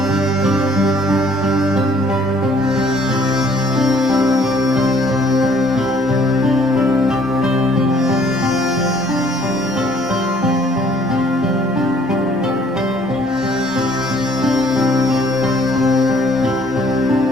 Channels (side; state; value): both; normal; correlation 0.60